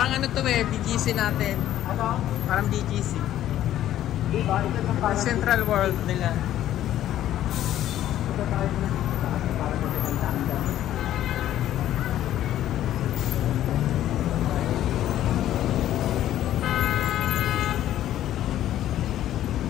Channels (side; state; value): right; quieter; 12.4 dB